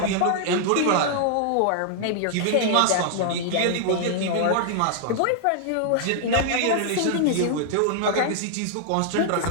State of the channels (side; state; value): both; different; correlation -0.01